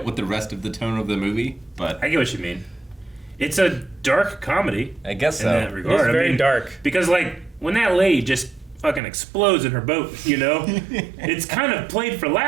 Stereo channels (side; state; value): left; drops out; at 9.0 s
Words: with the rest of the tone of the movie. But I get what you mean. It's a dark comedy. I guess in so. that regard. It's very dark. Because like when that lady just fucking explodes in her boat, you know, it's kind of played for